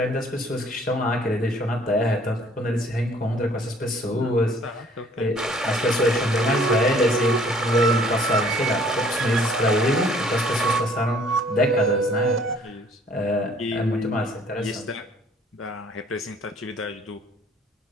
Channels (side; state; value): both; normal; correlation 0.58